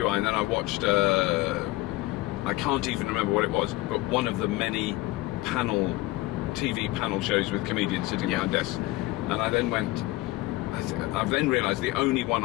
and then I watched, I can't even remember what it was, but one of the many TV panel shows with comedians sitting behind desks. And I then I've then realised the only one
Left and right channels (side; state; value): right; quieter; 19.4 dB